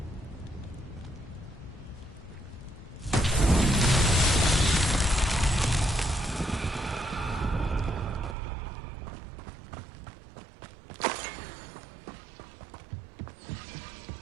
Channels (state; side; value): drops out; left; at 8.3 s